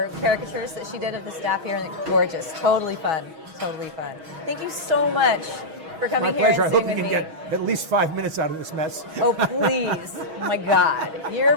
caricatures that she did of the staff here, and they're gorgeous. Totally fun. Totally fun. Thank you so much for coming My here pleasure. I and hope sitting you with can me. get at least 5 minutes out of this mess. Oh, please. Oh, my God. You're a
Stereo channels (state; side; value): late; left; 6.3 ms